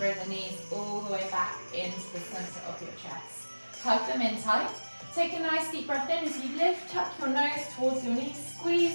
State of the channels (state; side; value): inverted; both; correlation -1.00